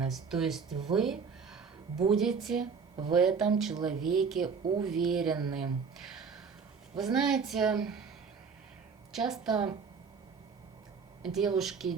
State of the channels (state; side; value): quieter; left; 5.6 dB